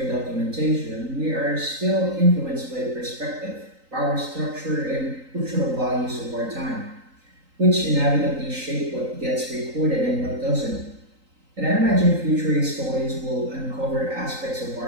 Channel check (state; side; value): late; left; 3.9 ms